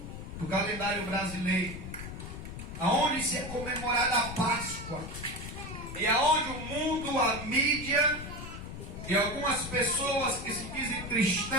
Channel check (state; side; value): noise; left; rumble, 9 dB below the sound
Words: do calendário brasileiro, aonde se é comemorada a Páscoa e aonde o mundo, a mídia e algumas pessoas que se dizem